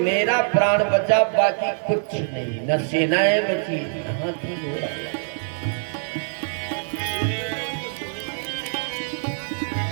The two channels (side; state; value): left; silent; 62 dB below the other